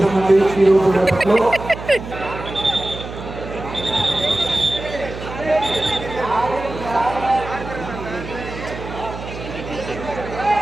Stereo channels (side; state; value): right; noise; hum, 10 dB below the sound